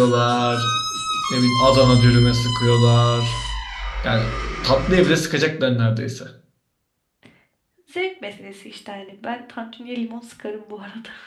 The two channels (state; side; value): identical; both; correlation 1.00